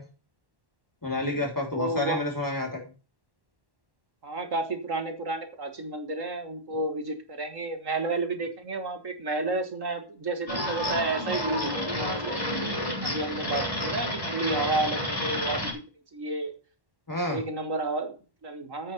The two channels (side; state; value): left; late; 1.1 ms